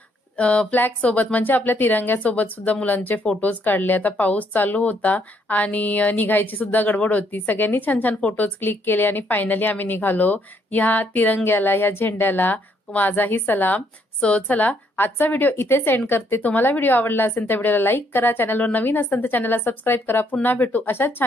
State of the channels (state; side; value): normal; both; correlation 0.70